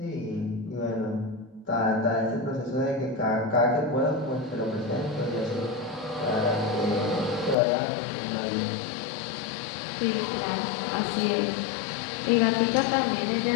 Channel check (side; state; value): right; drops out; at 7.6 s